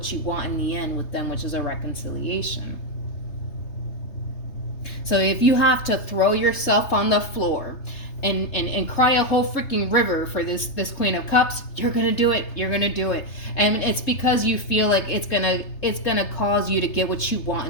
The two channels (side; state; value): right; late; 3.3 ms